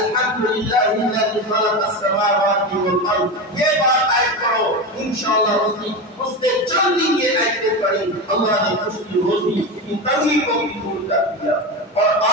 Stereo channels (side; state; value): both; normal; correlation 0.20